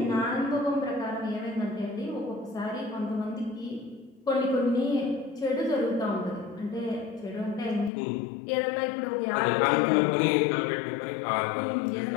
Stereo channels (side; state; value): right; drops out; at 7.9 s